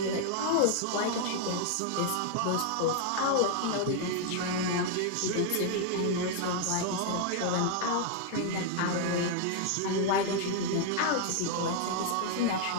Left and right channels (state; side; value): different; both; correlation 0.00